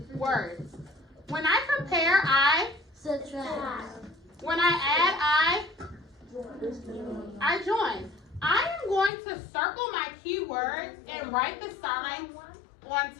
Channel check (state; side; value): drops out; right; at 9.1 s